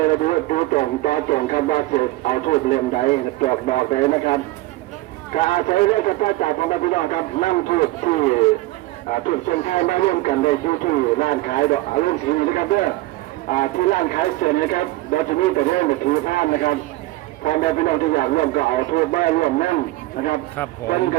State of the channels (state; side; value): quieter; left; 18.5 dB